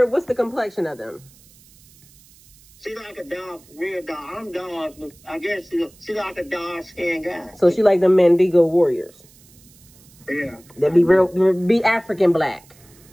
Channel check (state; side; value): noise; right; hiss, 27 dB below the sound